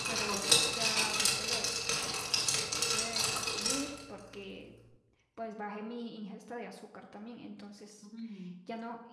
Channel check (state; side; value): identical; both; correlation 1.00